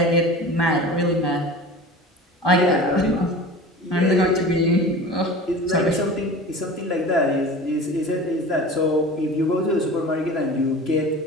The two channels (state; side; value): normal; both; correlation 0.37